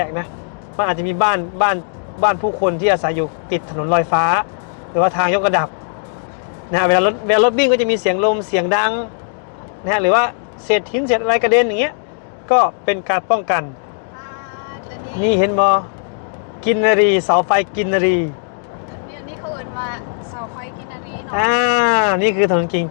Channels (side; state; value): right; silent; digital silence